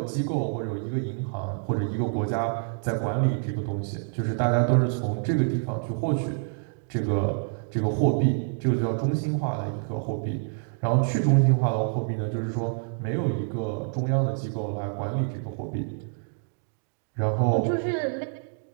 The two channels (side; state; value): left; silent; 60 dB below the other